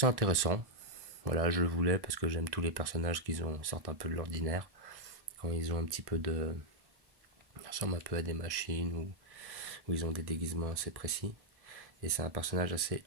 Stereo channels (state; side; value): late; left; 1.1 ms